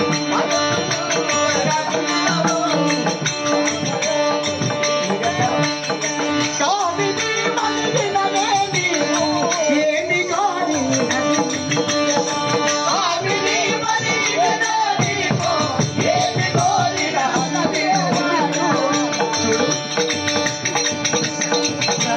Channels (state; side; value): identical; both; correlation 1.00